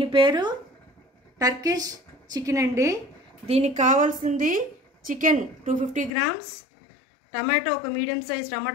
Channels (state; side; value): drops out; right; at 6.1 s